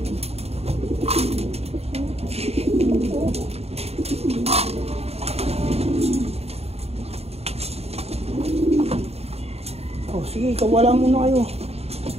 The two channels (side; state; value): left; late; 0.30 ms